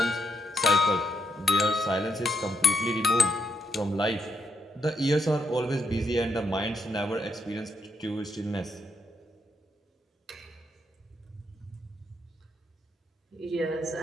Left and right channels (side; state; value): both; normal; correlation 0.77